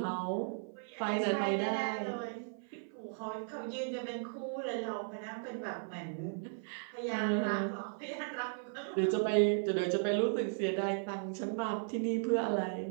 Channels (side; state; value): left; silent; 54 dB below the other